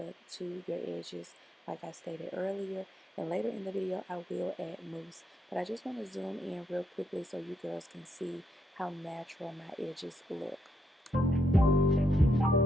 to your edges like I stated earlier. And later in the video, I will add mousse. But I just want to zoom in real quickly so you girls can see how natural my edges look.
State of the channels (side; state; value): both; normal; correlation 0.78